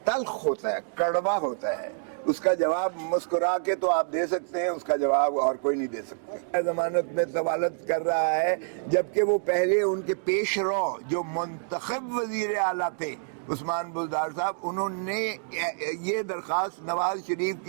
تلخ ہوتا ہے، کڑوا ہوتا ہے، اس کا جواب مسکرا کے تو آپ دے سکتے ہیں، اس کا جواب اور کوئی نہیں دے سکتا۔ ضمانت میں طوالت کر رہا ہے، جبکہ وہ پہلے ان کے پیش رو جو منتخب وزیر اعلیٰ تھے عثمان بزدار صاحب، انہوں نے یہ درخواست نواز شریف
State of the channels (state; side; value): silent; left; digital silence